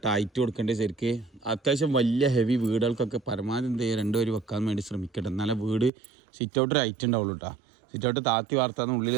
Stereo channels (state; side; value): drops out; left; at 5.9 s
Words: ഹൈറ്റ് കൊടുക്കേണ്ടത്. ശരിക്ക് അത്യാവശ്യം വലിയ ഹെവി വീടുകൾക്കൊക്കെ പരമാവധി എന്ത് ചെയ്യുക 2 വരി വെക്കാൻ വേണ്ടി ശ്രമിക്കട്ടെ. എന്നാലേ വീട് സിറ്റ് ഔട്ടൊരു ഹൈറ്റ് ഉണ്ടാവുള്ളൂ കേട്ടോ. സിറ്റ് ഔട്ട് താത്തി വാർത്താന്ന് ഉള്ളിൽ